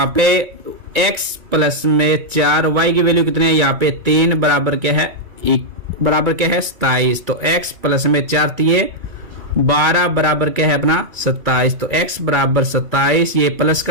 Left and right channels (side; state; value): left; late; 2.6 ms